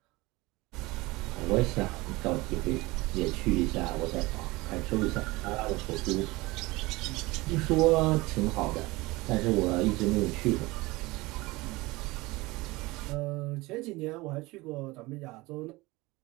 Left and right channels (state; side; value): quieter; left; 21.7 dB